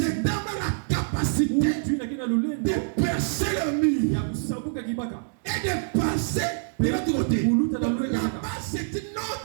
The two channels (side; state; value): left; silent; digital silence